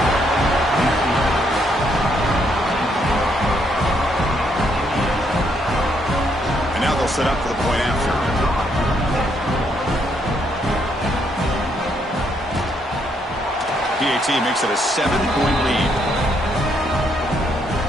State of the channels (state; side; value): normal; both; correlation 0.73